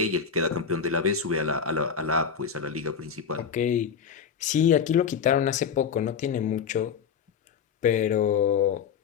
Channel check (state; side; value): quieter; right; 6.8 dB